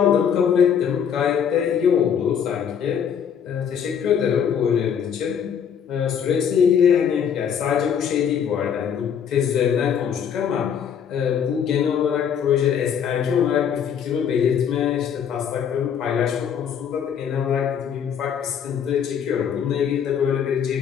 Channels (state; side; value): quieter; right; 8.0 dB